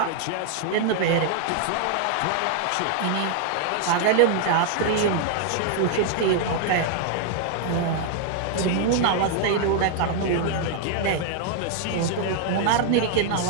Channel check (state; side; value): different; both; correlation 0.00